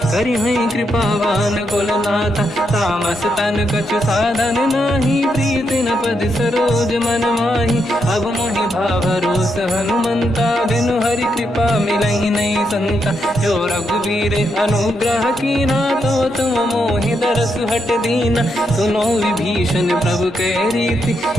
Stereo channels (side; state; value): both; normal; correlation 0.81